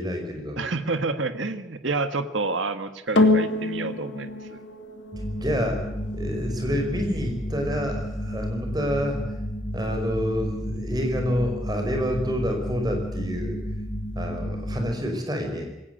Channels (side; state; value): both; normal; correlation 0.59